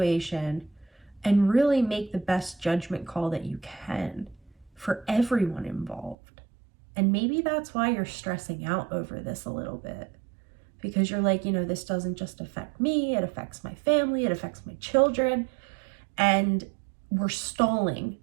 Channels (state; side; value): drops out; left; at 6.2 s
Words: and really make the best judgment call that you can for everyone involved. And maybe that's why you're stressing out over this a little bit, because you're like, this doesn't just affect me, it affects my family, it affects my children, and we're stalling